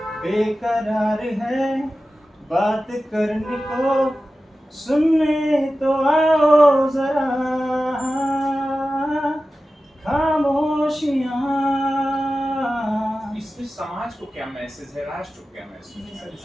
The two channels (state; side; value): normal; both; correlation 0.94